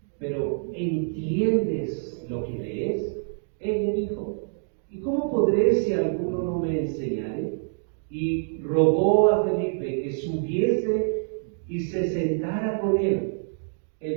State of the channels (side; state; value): left; silent; digital silence